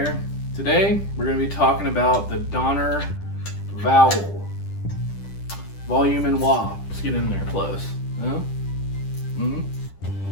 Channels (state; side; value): late; right; 10 ms